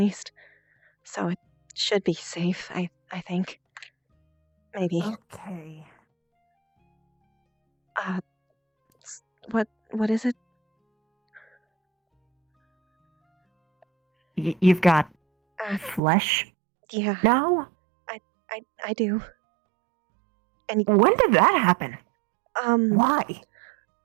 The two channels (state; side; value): drops out; left; at 16.0 s